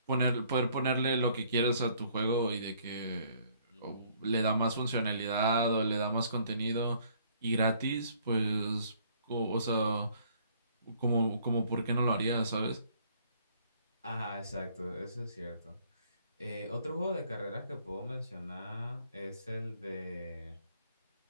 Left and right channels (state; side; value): inverted; both; correlation -0.62